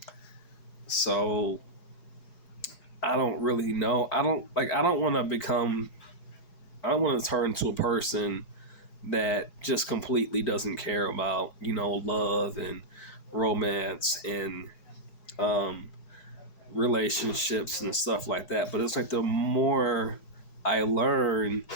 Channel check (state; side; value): late; right; 4.8 ms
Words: So I don't really know. I don't like. I don't want to become. I don't want to turn to a person that just completely doesn't care about love and romance and um, relationships and stuff like that. But it's like the more I learn,